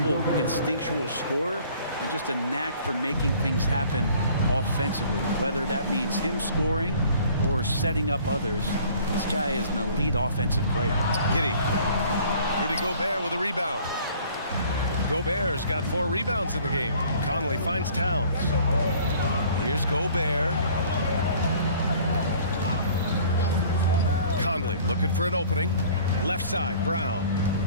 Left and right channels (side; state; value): both; inverted; correlation -0.52